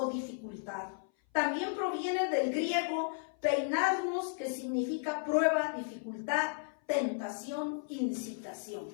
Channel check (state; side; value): silent; right; 55 dB below the other